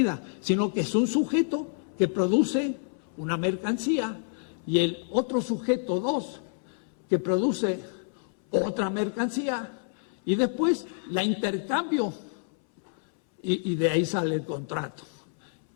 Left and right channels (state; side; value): silent; right; 59 dB below the other